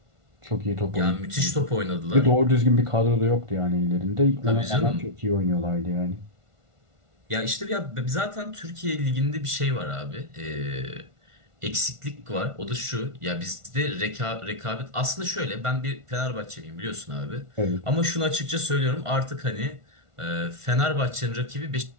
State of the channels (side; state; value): left; late; 1.4 ms